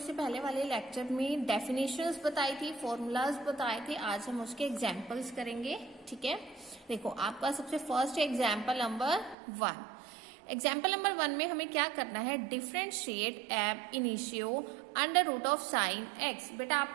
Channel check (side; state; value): left; drops out; at 9.3 s